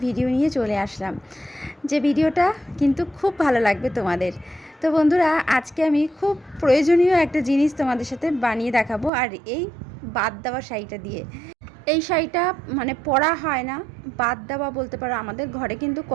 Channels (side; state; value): left; drops out; at 9.1 s